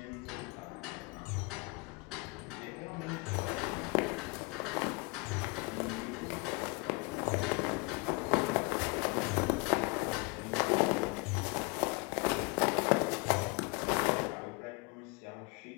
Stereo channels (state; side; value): quieter; right; 28.7 dB